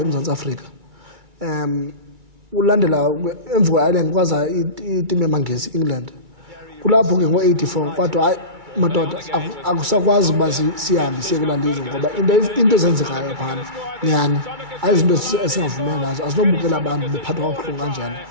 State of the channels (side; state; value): left; late; 2.3 ms